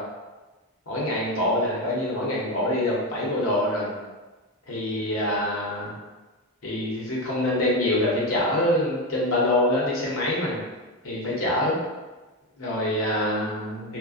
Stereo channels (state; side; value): normal; both; correlation 0.13